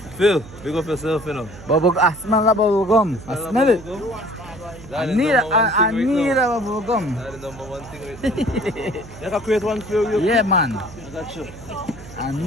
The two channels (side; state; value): right; noise; hum, 17 dB below the sound